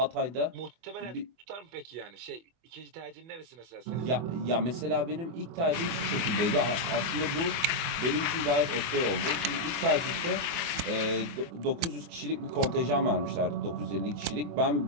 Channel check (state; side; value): late; left; 24 ms